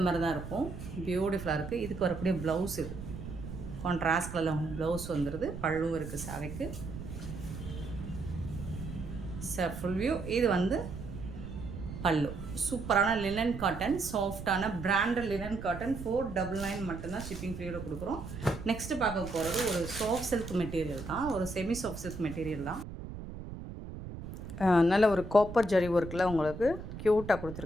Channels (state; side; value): noise; right; rumble, 9 dB below the sound